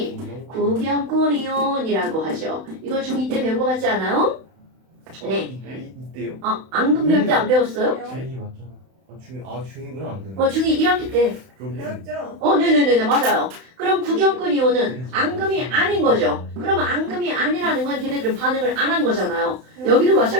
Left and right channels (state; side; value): late; left; 31 ms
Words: 구경꾼이온이라고 하죠. 이거 중2 때 배운 거 같지 않아요? 네. 이때요? 앙금 배울 때 안 배웠어요? 중2 맞잖아. 중2구나 안 되네. 중2 1학기 때. 배웠죠? 네네네 맞아요. 그럼 구경꾼 이온은 앙금이 아닌 거죠. 그러면 앙금이 아니라는 건 걔네들은 반응을 안 한 거잖아요. 여기도